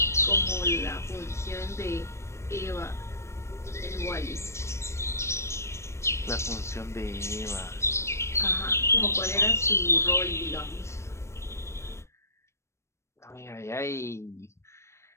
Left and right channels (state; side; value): late; right; 0.13 ms